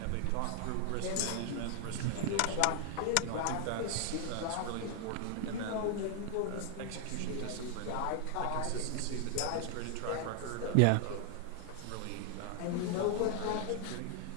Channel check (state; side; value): different; both; correlation 0.00